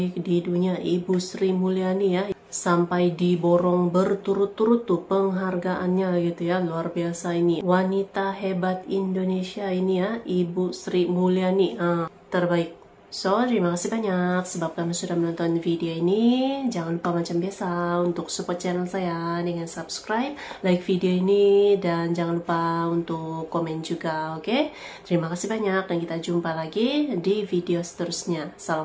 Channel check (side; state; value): both; identical; correlation 1.00